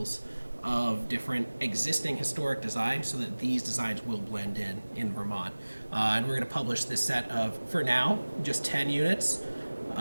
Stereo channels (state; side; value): inverted; both; correlation -1.00